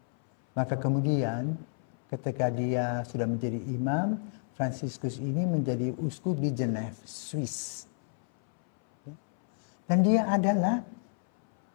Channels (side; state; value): right; silent; 58 dB below the other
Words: Maka kemudian ketika dia sudah menjadi imam, Fransiskus ini menjadi uskup di Geneva, Swiss. Dan dia adalah